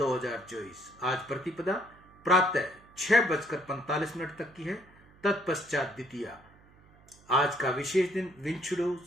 आज प्रतिपदा प्रातः 6:45 तक की है, तत्पश्चात द्वितीया। आज का विशेष दिन विंचुड़ो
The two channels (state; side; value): noise; right; hum, 27 dB below the sound